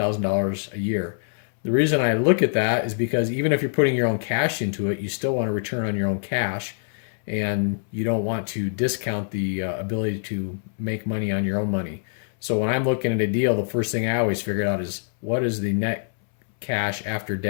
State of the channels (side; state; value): right; silent; 62 dB below the other